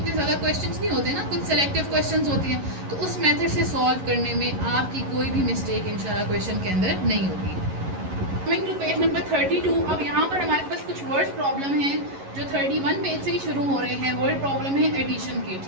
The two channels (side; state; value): left; late; 11 ms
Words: ज़्यादा क्वेश्चंस नहीं होते ना, कुछ सेलेक्टिव क्वेश्चंस होते हैं, तो उस मेथड से सॉल्व करने में आपकी कोई भी मिस्टेक इंशाल्लाह क्वेश्चन के अंदर नहीं होगी। कमिंग टू पेज नंबर 32, अब यहाँ पर हमारे पास कुछ वर्ड प्रॉब्लम हैं जो 31 पेज से ही शुरू हो रहे हैं। वर्ड प्रॉब्लम है एडिशन के,